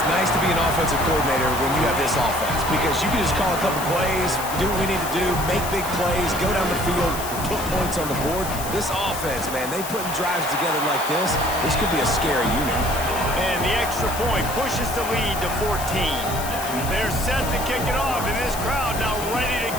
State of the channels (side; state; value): left; noise; hiss, 9 dB below the sound